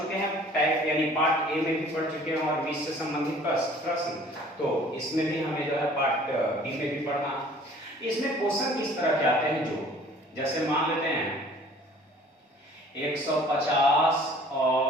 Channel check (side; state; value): both; normal; correlation 0.52